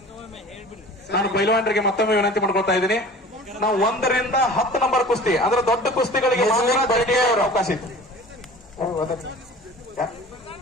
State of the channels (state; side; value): normal; both; correlation 0.42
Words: ನಾನು ಪೈಲ್ವಾನರಿಗೆ ಮತ್ತೊಮ್ಮೆ ವಿನಂತಿ ಮಾಡ್ಕೊಳ್ತಾ ಇದ್ದೀನಿ. ನಾವು 1 ರಿಂದ 10 ನಂಬರ್ ಕುಸ್ತಿ ಅಂದ್ರೆ ದೊಡ್ಡ ಕುಸ್ತಿಗಳಿಗೆ ಅವಕಾಶ ಇತ್ತು.